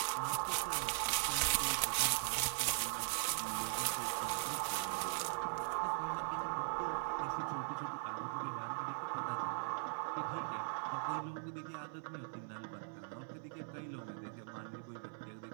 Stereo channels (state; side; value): silent; left; 51 dB below the other